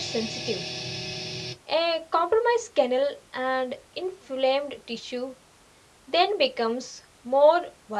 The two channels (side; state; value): both; identical; correlation 1.00